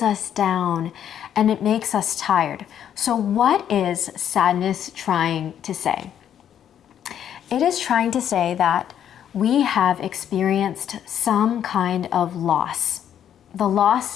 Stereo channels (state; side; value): quieter; right; 9.7 dB